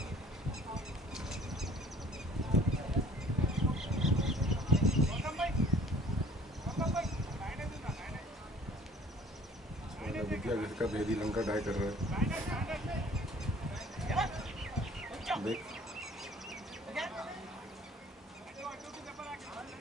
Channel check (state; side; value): normal; both; correlation 0.53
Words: विद्या घर का भेदी लंका डाई कर रहा है। देख